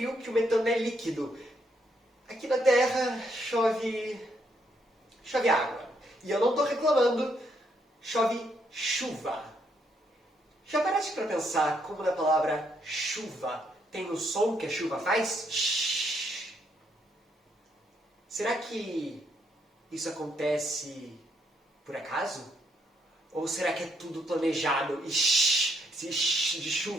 que o metano é líquido. Aqui na Terra chove água. E eu não estou reclamando, chove chuva. Já paraste para pensar como na palavra chuva tem o som que a chuva faz? Shhh. Será que isso acontece por acaso? Ou será que é tudo planejado e shhh, se shhh de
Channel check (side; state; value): both; normal; correlation 0.74